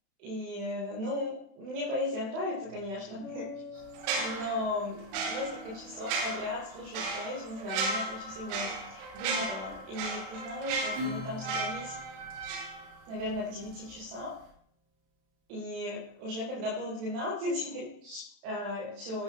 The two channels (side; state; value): left; late; 31 ms